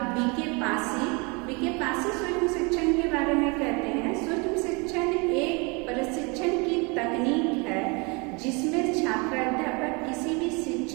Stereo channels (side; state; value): left; quieter; 29.9 dB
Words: बीके पासी सूक्ष्म शिक्षण के बारे में कहते हैं, सूक्ष्म शिक्षण एक प्रशिक्षण की तकनीक है जिसमें छात्र अध्यापक किसी भी